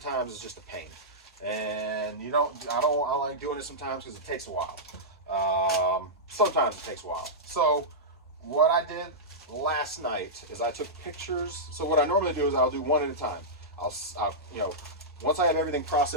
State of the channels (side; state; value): both; normal; correlation -0.12